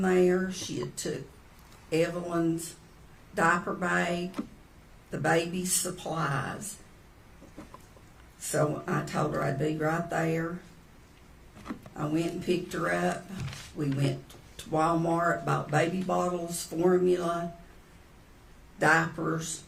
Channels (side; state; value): both; identical; correlation 1.00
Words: there. She had took Evelyn's diaper bag, the baby's supplies. So I told her I'd be right there. I went and picked her up. We went to Walmart, bought baby bottles, formula, diapers,